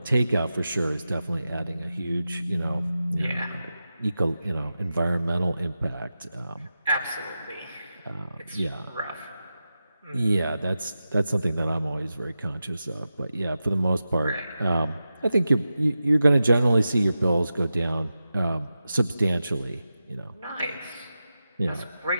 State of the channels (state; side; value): inverted; both; correlation -0.92